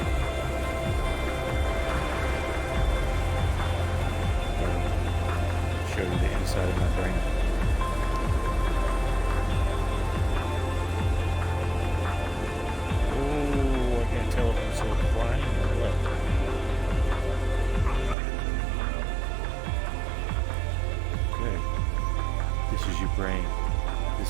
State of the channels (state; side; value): drops out; left; at 18.2 s